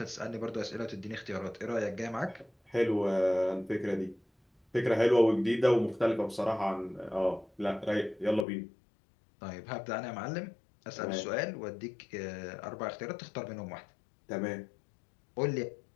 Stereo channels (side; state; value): right; drops out; at 8.5 s